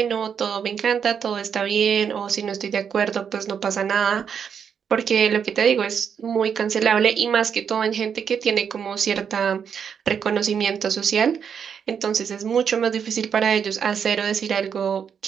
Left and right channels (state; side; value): quieter; left; 7.3 dB